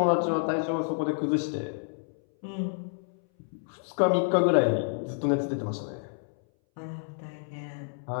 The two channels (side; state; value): right; silent; 59 dB below the other